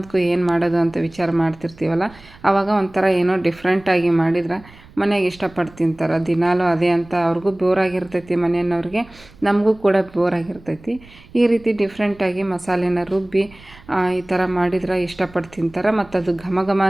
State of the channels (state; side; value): noise; right; rumble, 23 dB below the sound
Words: ಏನು ಮಾಡೋದು ಅಂತ ವಿಚಾರ ಮಾಡ್ತಿರ್ತೀವಲ್ಲ, ಆವಾಗ ಒಂಥರ ಏನೋ ಡಿಫ್ರೆಂಟಾಗಿ ಮಾಡಿದ್ರೆ ಮನೆಗೆ ಇಷ್ಟಪಟ್ಟು ತಿಂತಾರೆ. ದಿನಾಲೂ ಅದೇ ಅಂತ ಅವ್ರಿಗೂ ಬೋರಾಗಿರ್ತೈತಿ, ಮನೆಯವ್ರಿಗೆ, ನಮಗೂ ಕೂಡ ಬೋರಾಗಿರ್ತೈತಿ. ಈ ರೀತಿ ಡಿಫ್ರೆಂಟಾಗಿ ಮಸಾಲೆನ ರುಬ್ಬಿ ಈ ಥರ ಮಾಡಿದ್ರೆ ಇಷ್ಟಪಟ್ಟು ತಿಂತಾರೆ. ಮತ್ತು ಅದು ಘಮ ಘಮ